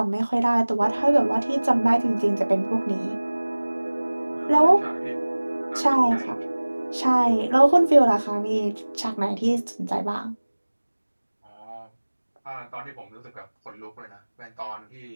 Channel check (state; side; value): inverted; both; correlation -1.00